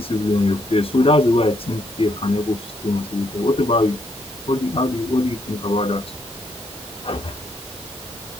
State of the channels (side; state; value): both; normal; correlation 0.74